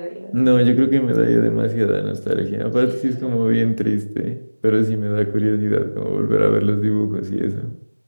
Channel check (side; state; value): both; inverted; correlation -1.00